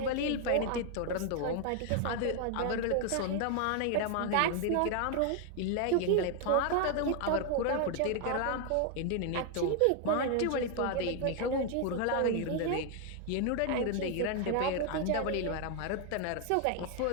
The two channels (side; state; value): both; different; correlation 0.00